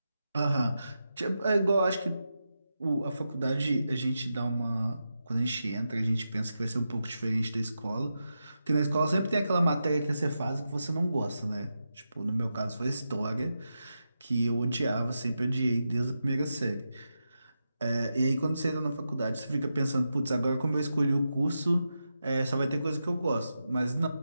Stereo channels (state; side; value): inverted; both; correlation -0.88